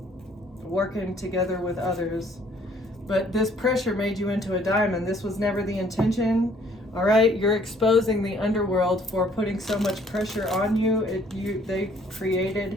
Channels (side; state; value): both; normal; correlation 0.61